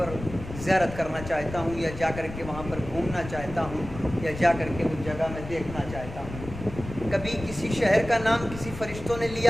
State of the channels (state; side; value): noise; left; rumble, 11 dB below the sound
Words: زیارت کرنا چاہتا ہوں، یا جا کر کے وہاں پر گھومنا چاہتا ہوں، یا جا کر کے اس جگہ میں دیکھنا چاہتا ہوں؟ کبھی کسی شہر کا نام کسی فرشتوں نے